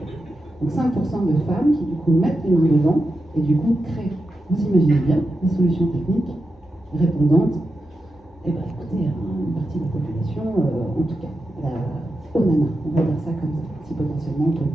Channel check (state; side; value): normal; both; correlation 0.89